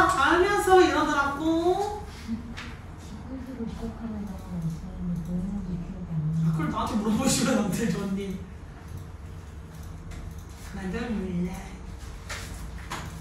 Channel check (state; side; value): identical; both; correlation 1.00